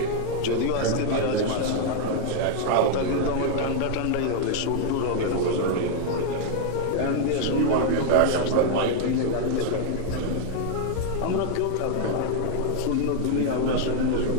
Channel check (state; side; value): different; both; correlation 0.00